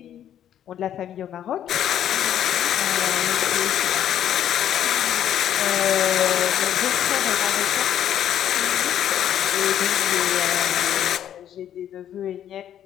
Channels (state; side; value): quieter; right; 10.5 dB